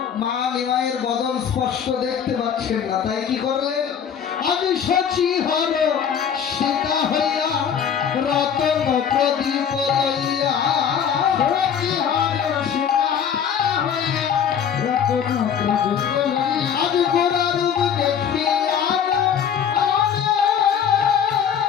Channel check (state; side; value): quieter; right; 8.0 dB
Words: মা নিমাইয়ের বদন স্পষ্ট দেখতে পাচ্ছেন না, তাই কি করলেন? আমি সচি হর সীতা হইয়া রতন প্রদীপ লইয়া, সচি হর সীতা হইয়া রতন প্রদীপ লইয়া, আজ গোরা রূপ দেখিয়া